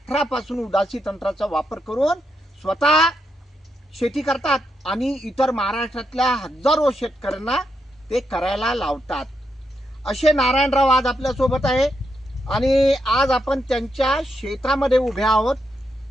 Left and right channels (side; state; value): both; normal; correlation 0.82